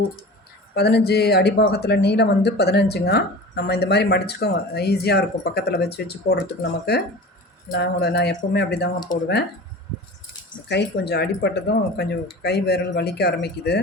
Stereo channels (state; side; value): normal; both; correlation 0.36